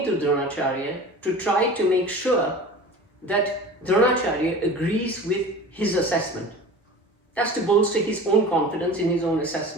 to Dronacharya to try to make sure that Dronacharya agrees with his assessment. That's to bolster his own confidence in his own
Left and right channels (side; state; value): both; normal; correlation 0.37